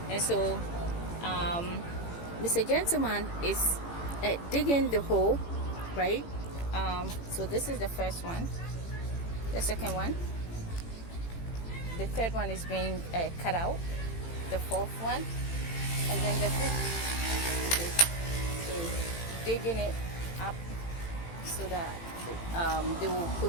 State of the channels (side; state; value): right; late; 18 ms